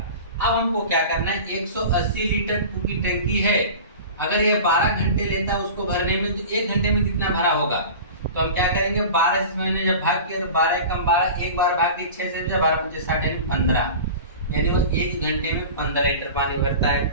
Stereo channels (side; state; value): both; inverted; correlation -0.36